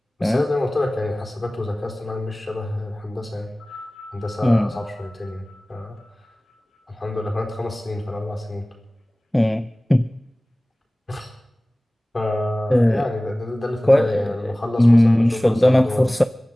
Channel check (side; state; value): both; normal; correlation 0.98